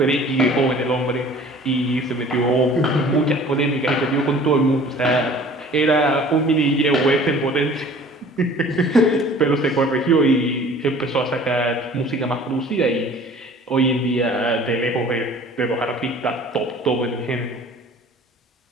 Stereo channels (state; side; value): normal; both; correlation 0.48